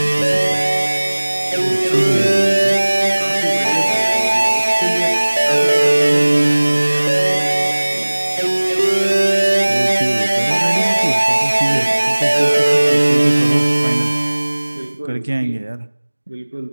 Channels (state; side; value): inverted; both; correlation -1.00